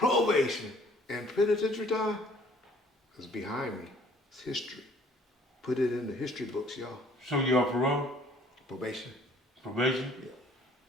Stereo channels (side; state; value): both; normal; correlation 0.58